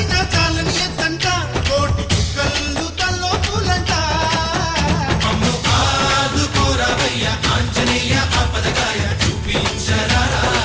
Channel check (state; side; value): identical; both; correlation 1.00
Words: చాలని ఎత్తంట కోటి చుక్కలు తల్లో పూలంట మమ్ము ఆదుకోరవయ్య ఆంజనేయ ఆపదగాయ